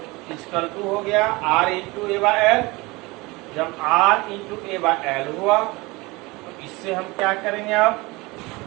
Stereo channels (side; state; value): left; quieter; 23.3 dB